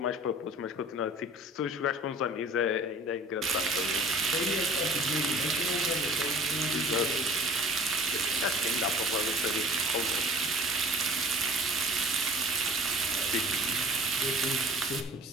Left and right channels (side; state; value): both; normal; correlation 0.46